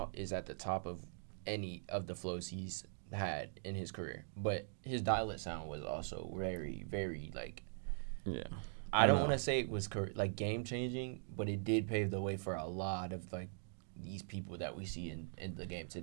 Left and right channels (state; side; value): silent; left; digital silence